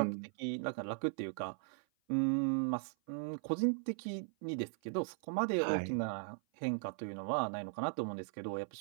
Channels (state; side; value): silent; left; 52 dB below the other